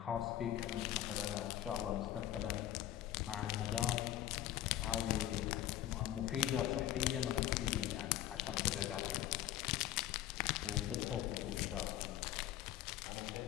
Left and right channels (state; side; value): quieter; right; 13.0 dB